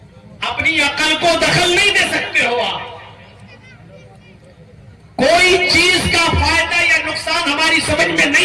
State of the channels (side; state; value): both; identical; correlation 1.00